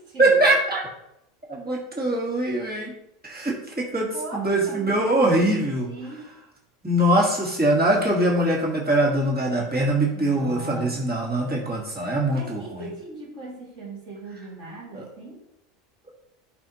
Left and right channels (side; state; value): both; normal; correlation 0.43